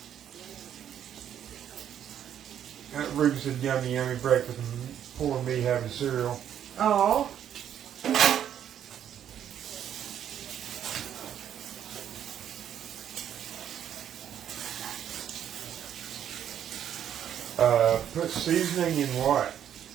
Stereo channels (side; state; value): left; quieter; 9.8 dB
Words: Ruby said yummy, yummy breakfast and poor me having cereal. Oh. Put seasoning in what?